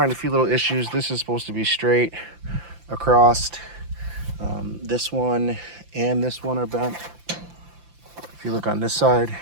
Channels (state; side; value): late; left; 5.8 ms